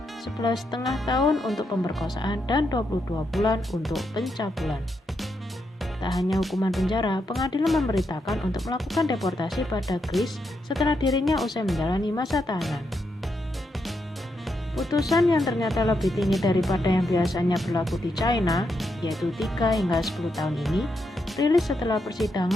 11,5 tahun untuk pemerkosaan dan 22 bulan untuk pencabulan. Tak hanya hukuman penjara, pengadilan memberitakan untuk melakukan deportasi pada Kris setelah dirinya usai menjalani masa tahanan. Putusan yang ternyata lebih tinggi daripada yang biasanya berlaku di China, yaitu 3 hingga 10 tahun ini, rilis setelah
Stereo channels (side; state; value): both; normal; correlation 0.82